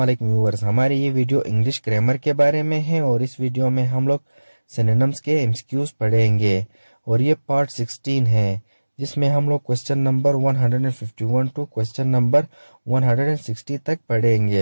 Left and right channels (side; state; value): both; inverted; correlation -1.00